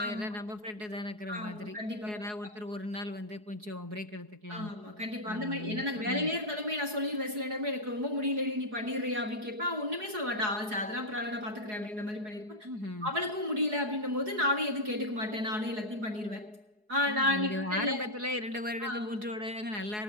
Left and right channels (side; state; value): left; late; 4.7 ms